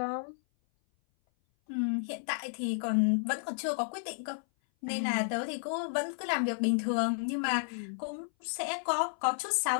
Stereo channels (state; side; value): silent; right; 56 dB below the other